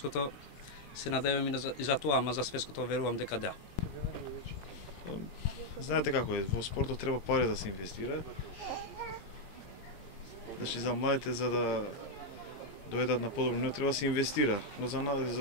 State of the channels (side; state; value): right; late; 18 ms